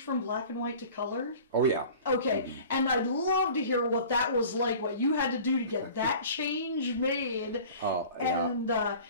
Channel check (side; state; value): both; inverted; correlation -0.43